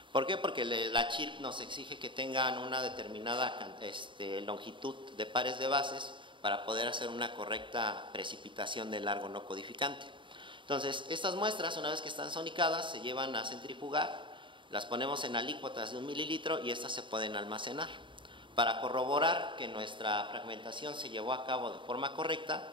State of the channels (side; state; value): left; late; 0.24 ms